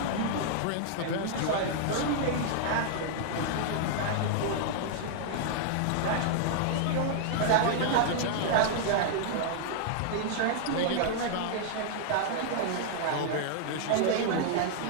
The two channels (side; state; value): both; different; correlation -0.01